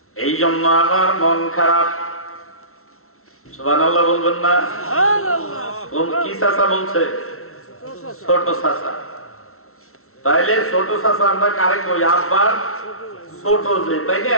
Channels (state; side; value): late; right; 0.63 ms